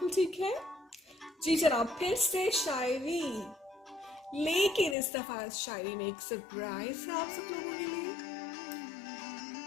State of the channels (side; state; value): right; drops out; at 5.0 s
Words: ठीक है। जी जनाब, फिर से शायरी, लेकिन इस दफा इस शायरी में एक सरप्राइज है आप सब लोगों के लिए।